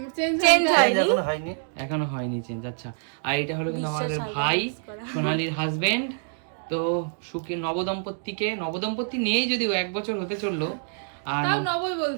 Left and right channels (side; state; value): left; silent; digital silence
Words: চেঞ্জ হয়নি, এখনো হয়নি চেঞ্জ। আচ্ছা, আর এটা হলো কিন্তু আমাদের ভাই সোনালির হাজবেন্ড। তো সুখী নবদম্পতি নেই, যদিও 1 বছর হতে চললো। আর নবই